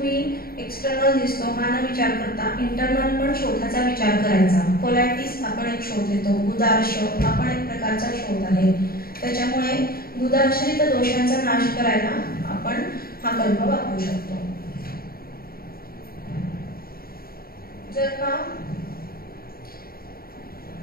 एक्सटर्नल दिसतो हा न विचार करता इंटरनल पण शोथाचा विचार करायचा. कोलायटिस आपण एक शोथ येतो, गुदार्श हा पण एक प्रकारचा शोथ आहे. त्याच्यामुळे गुदाश्रित दोषांचा नाश करायला आपण हा कल्प वापरू शकतो. जर का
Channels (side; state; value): right; late; 0.43 ms